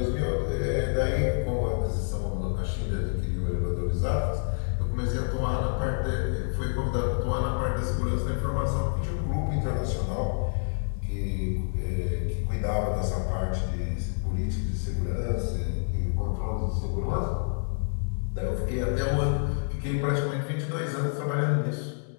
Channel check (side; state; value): right; silent; digital silence